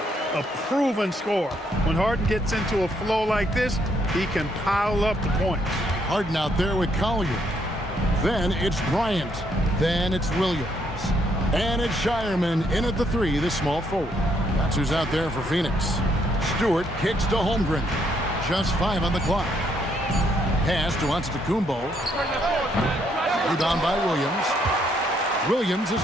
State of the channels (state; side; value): normal; both; correlation 0.72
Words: A proven scorer. When Harden gets into a flow like this, he can pile up the points. Harden out there with Collier. Then it's Bryant. Then it's Williams. And it's Shireman in at the 3, the small forward. That's who's out there for Phoenix. Stewart kicks to Holmgren. Just 5 on the clock. Pass to Antetokounmpo. Rebound by Williams. Williams has